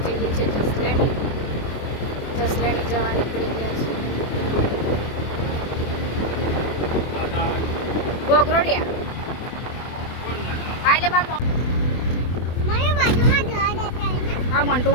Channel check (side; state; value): right; late; 24 ms